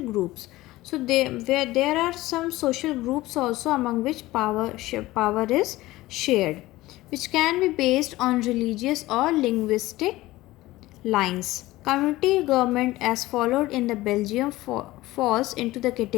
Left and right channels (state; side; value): quieter; right; 17.9 dB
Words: groups. So there are some social groups also among which power is shared, which can be based on religious or linguistic lines. Community government as followed in the Belgium falls into the